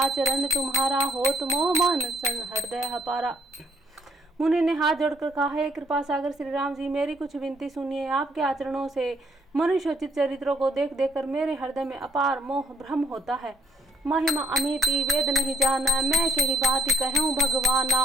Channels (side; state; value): both; normal; correlation 0.66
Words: तुम्हारा, होत मोह मन सन हृदय हपारा। मुनि ने हाथ जोड़कर कहा, हे कृपा सागर श्री राम जी, मेरी कुछ विनती सुनिए। आपके आचरणों से मनुष्योचित चरित्रों को देख देख कर मेरे हृदय में अपार मोह भ्रम होता है। महिमा अमिति वेद नहीं जाना, मैं के ही बात कहूँ भगवाना।